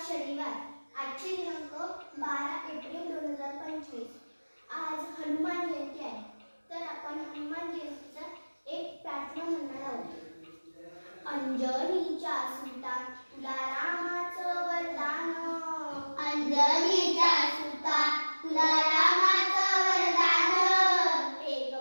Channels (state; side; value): inverted; both; correlation -1.00